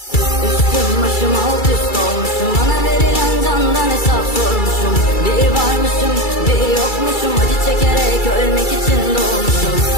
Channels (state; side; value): late; right; 2.3 ms